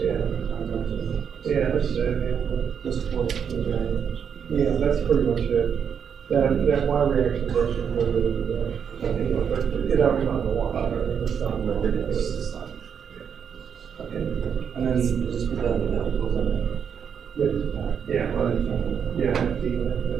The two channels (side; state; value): left; quieter; 7.4 dB